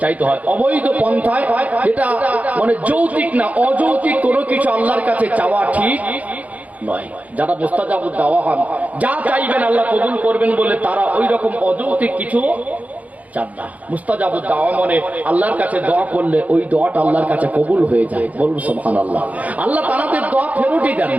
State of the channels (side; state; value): left; late; 0.072 ms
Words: চাইতে হয়। অবৈধ পন্থায়, যেটা মানে যৌক্তিক না, অযৌক্তিক কোনো কিছু আল্লাহর কাছে চাওয়া ঠিক নয়। যারা মুস্তাজাবুদ দাওয়া হন, যা চাইবেন আল্লাহ কবুল করবেন বলে তারা ওই রকম অযৌক্তিক কিছু চান না। মুস্তাজাবুদ দাওয়া মানে আল্লাহর কাছে দোয়া করলে ওই দোয়াটা আল্লাহর কাছে কবুল হয়ে যায়, বলুন সুবহানাল্লাহ। আল্লাহ তাদের দোয়া ফেরতই দেন